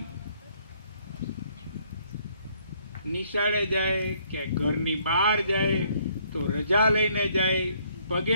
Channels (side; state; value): both; inverted; correlation -0.66